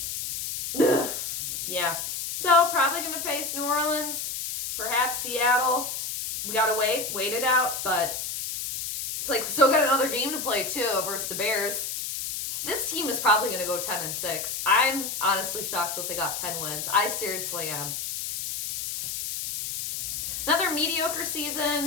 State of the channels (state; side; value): noise; left; hiss, 4 dB below the sound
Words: Ugh. Yeah. So, probably going to face New Orleans. Perhaps Seattle. We got to wait it out. But it's like we still got another game to play, too, versus the Bears. This team is probably going to go 10-6. I'm honestly shocked that they got 10 wins. I seriously am. Another mediocre